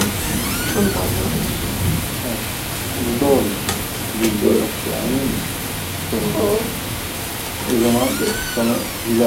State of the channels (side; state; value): both; identical; correlation 1.00